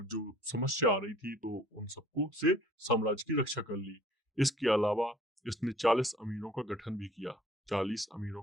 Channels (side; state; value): both; normal; correlation 0.53